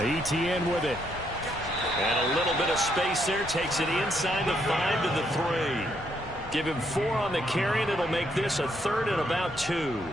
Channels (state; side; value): normal; both; correlation 0.74